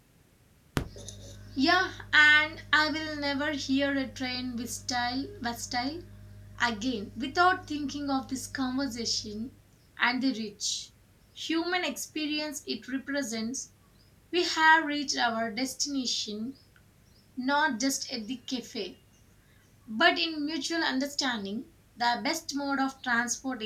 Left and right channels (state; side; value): identical; both; correlation 1.00